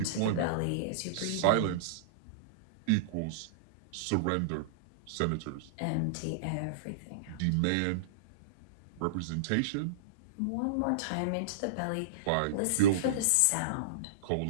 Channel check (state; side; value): different; both; correlation -0.03